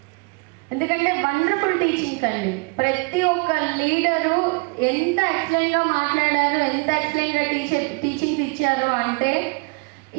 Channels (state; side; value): quieter; left; 31.2 dB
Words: ఎందుకంటే వండర్ఫుల్ టీచింగ్స్ అండి. ప్రతి ఒక్క లీడరు ఎంత ఎక్సలెంట్గా మాట్లాడారు, ఎంత ఎక్సలెంట్గా టీచింగ్స్ ఇచ్చారు అంటే